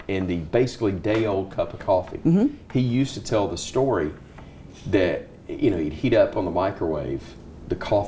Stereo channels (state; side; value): identical; both; correlation 1.00